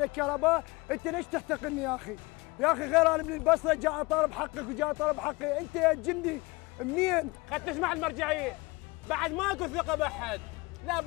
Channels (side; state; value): right; quieter; 24.2 dB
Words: الكهرباء، انت ليش تحتقرني يا اخي؟ يا اخي غير انا من البصره جاء اطالب حقك وجاء اطالب حقي، انت يا جندي منين؟ خد تسمع المرجعيه، بعد ماكو ثقه باحد، لا